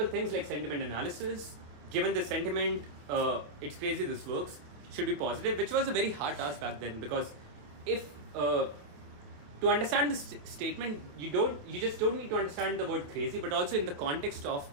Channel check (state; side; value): late; left; 27 ms